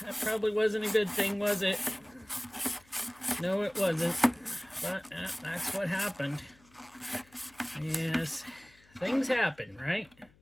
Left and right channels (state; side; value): noise; left; hum, 29 dB below the sound